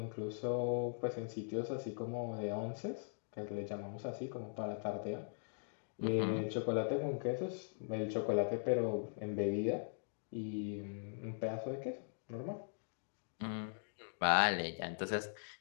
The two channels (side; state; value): right; silent; digital silence